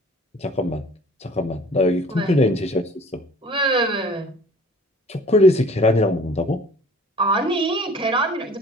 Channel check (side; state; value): both; normal; correlation 0.48